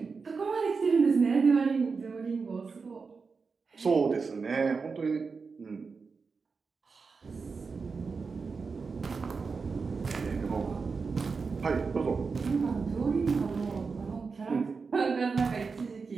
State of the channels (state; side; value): quieter; left; 4.8 dB